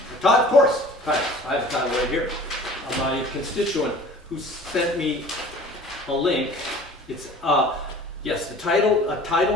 Of course, titles. I have a title right here. My constituent who sent me a link. It's yes, the title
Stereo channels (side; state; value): both; normal; correlation 0.45